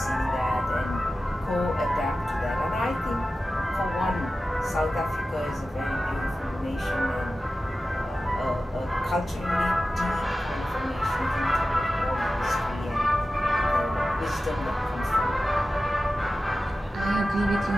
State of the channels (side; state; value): both; normal; correlation 0.94